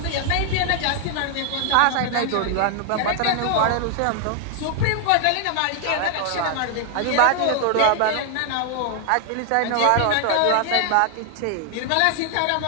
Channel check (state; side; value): different; both; correlation 0.00